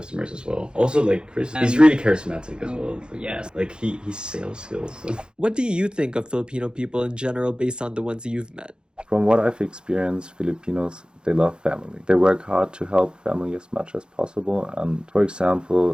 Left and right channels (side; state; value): left; late; 0.049 ms